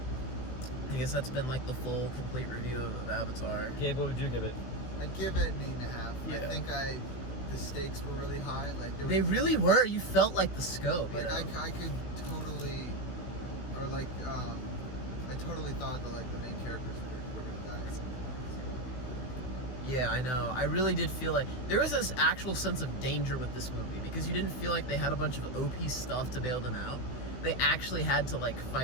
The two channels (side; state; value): right; late; 16 ms